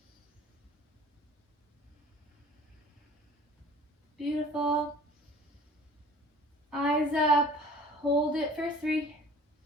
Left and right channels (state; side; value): normal; both; correlation 0.47